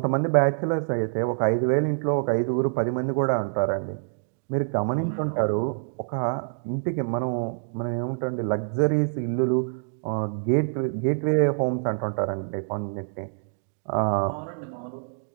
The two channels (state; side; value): silent; left; digital silence